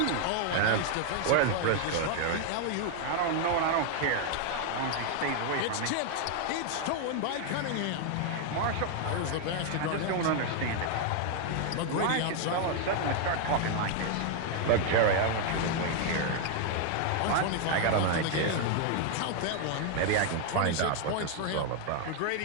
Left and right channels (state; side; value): different; both; correlation 0.00